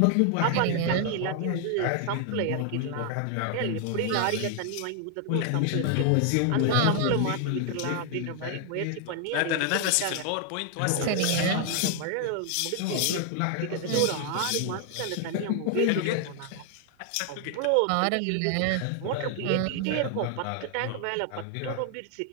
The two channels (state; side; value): different; both; correlation 0.00